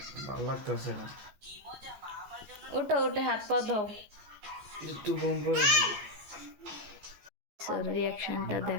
ভালো লাগতেছে না। উঠো, উঠে হাত পা ধো। একটু ঘুম পড়ে না। রিয়াকশনটা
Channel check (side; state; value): left; late; 14 ms